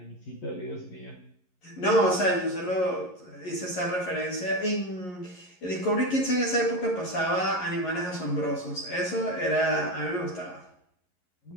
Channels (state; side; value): late; right; 11 ms